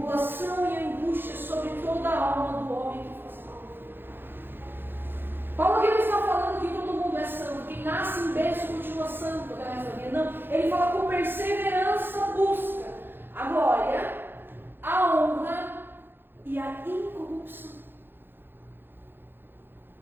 e angústia sobre toda a alma do homem que faz mal. Paulo aqui não está falando que todo mundo é santo, quem nasce em berço continua santo até o resto da vida. Não, ele fala: com perseverança busca a glória, a honra e a incorrupção.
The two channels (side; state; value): left; late; 0.10 ms